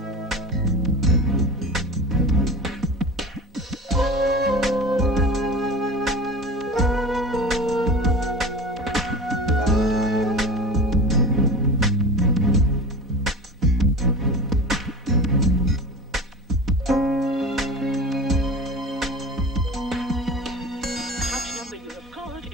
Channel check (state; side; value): normal; both; correlation 0.33